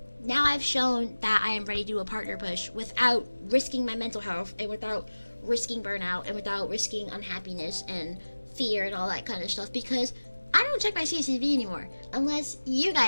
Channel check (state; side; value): inverted; both; correlation -1.00